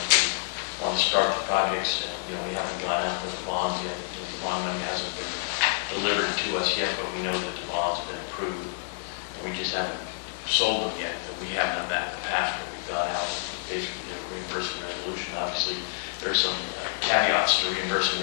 we want to start the projects. We haven't gone out with the bonds yet. The bond money hasn't been delivered to us yet, but we know that the bond's been approved. We just haven't sold them yet. We have done that in the past, but we've gone out and basically did a reimbursement resolution. Obviously, there's some caveats to reimbursement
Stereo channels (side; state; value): right; silent; digital silence